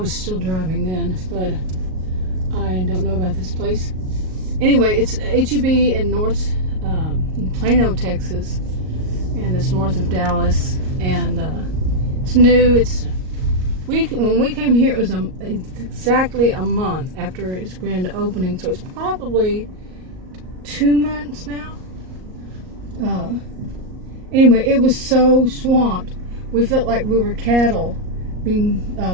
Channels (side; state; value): left; late; 38 ms